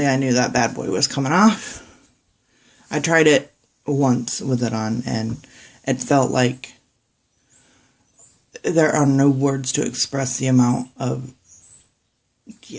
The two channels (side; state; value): both; identical; correlation 1.00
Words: I knew that bad boy was coming off. I tried it once with it on and it felt like there are no words to express the amount of,